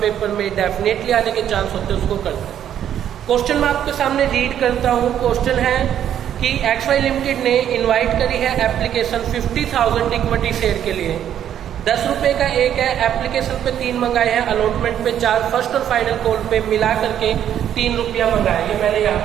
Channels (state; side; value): quieter; left; 10.1 dB